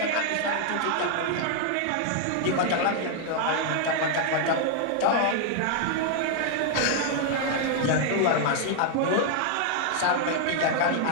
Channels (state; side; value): different; both; correlation 0.00